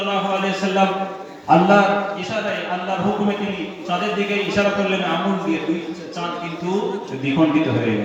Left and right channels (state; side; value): identical; both; correlation 1.00